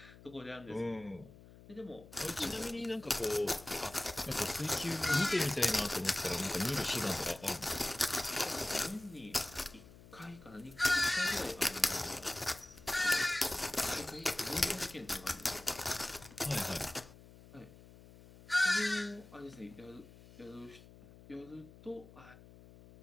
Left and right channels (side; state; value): left; noise; hum, 20 dB below the sound